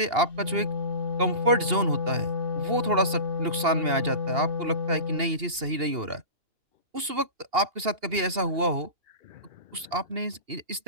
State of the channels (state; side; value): late; left; 2.8 ms